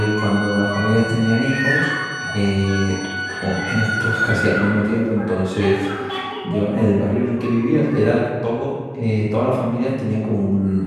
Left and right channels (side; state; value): both; identical; correlation 1.00